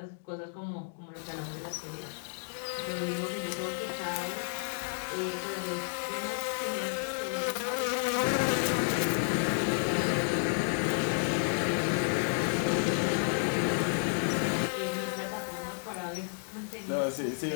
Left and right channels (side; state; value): right; silent; digital silence